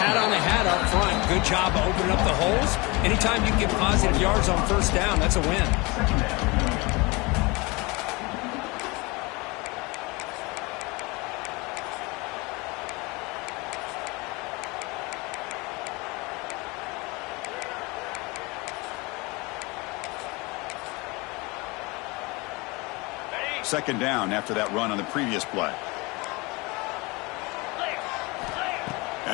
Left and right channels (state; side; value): quieter; right; 25.7 dB